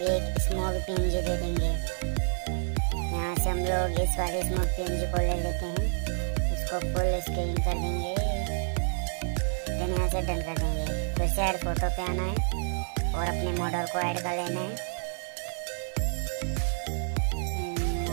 एक स्मॉग पीएनजी दे देंगे। यहाँ से हम लोग इस वाले स्मॉग पीएनजी को ले लेते हैं, इसको फुल स्क्रीन कर देंगे। देन यहाँ से डन कर देंगे। फिर से ऐड फोटो पे आना है और अपने मॉडल को ऐड कर लेना है।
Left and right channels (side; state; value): left; silent; 59 dB below the other